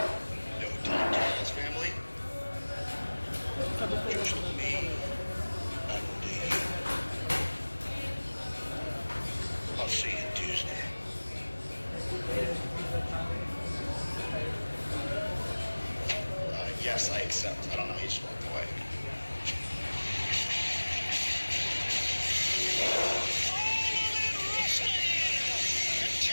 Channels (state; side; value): inverted; both; correlation -1.00